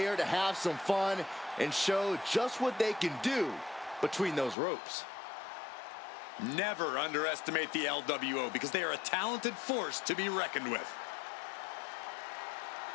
to have some fun and show just what they can do between those ropes. Never underestimate the LWO because they are a talented force to be reckoned with.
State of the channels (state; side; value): drops out; right; at 4.5 s